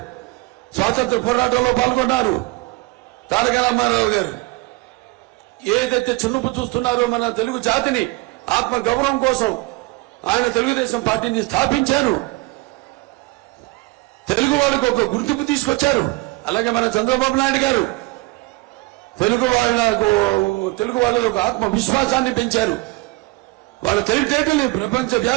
స్వాతంత్ర పోరాటంలో పాల్గొన్నారు. తారక రామారావు గారు ఏదైతే చిన్నపు చూస్తున్నారో మన తెలుగు జాతిని ఆత్మ గౌరవం కోసం ఆయన తెలుగుదేశం పార్టీని స్థాపించారు. తెలుగు వాళ్ళకు ఒక గుర్తింపు తీసుకొచ్చారు. అలాగే మన చంద్రబాబు నాయుడు గారు తెలుగు వాళ్ళ ఒక ఆత్మవిశ్వాసాన్ని పెంచారు. వాళ్ళ తెలివితేటల్ని ప్రపంచ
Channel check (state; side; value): quieter; left; 22.4 dB